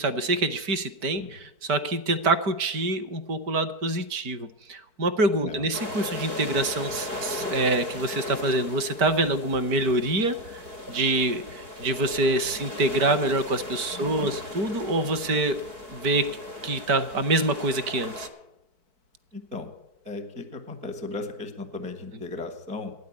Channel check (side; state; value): left; late; 4.6 ms